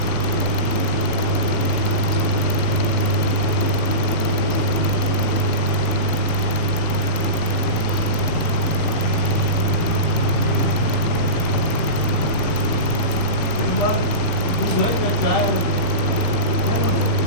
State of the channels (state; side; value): late; right; 18 ms